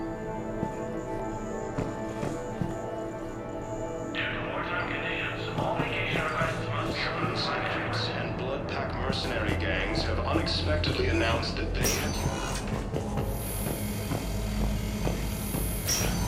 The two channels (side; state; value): both; identical; correlation 1.00